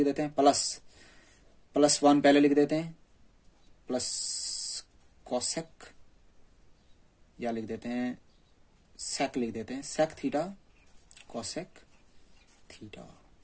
देते हैं, प्लस 1 पहले लिख देते हैं, प्लस कोसेक, या लिख देते हैं सेक, लिख देते हैं sec theta cosec theta.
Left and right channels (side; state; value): both; identical; correlation 1.00